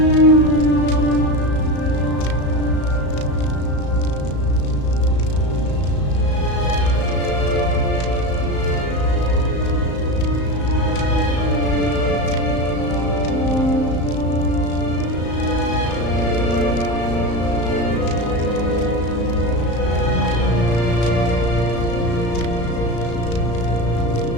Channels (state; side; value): late; right; 34 ms